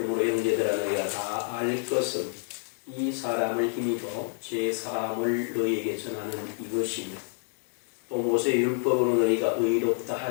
형제들아, 너희가 다 알 것은 이 사람을 힘입어 죄 사함을 너희에게 전하는 이것이며, 또 모세 율법으로 너희가 의롭다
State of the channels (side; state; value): right; silent; 59 dB below the other